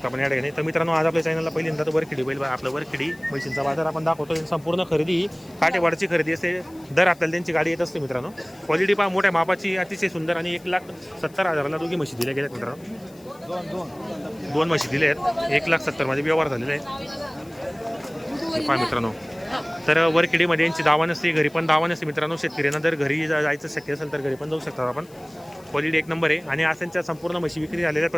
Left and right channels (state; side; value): noise; left; hiss, 27 dB below the sound